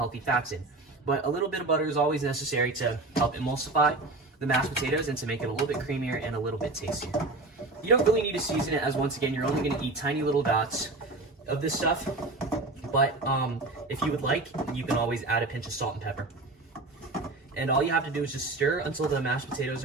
fats in. But a little bit of butter is always necessary to help emulsify the mashed potatoes and to make it a little bit creamier and a little bit tastier. You don't really need to season it, as once again, you're only going to eat tiny little dots of this stuff. But if you would like, you can always add a pinch of salt and pepper. And all you have to do is just stir until the mashed potatoes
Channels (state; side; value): quieter; left; 3.1 dB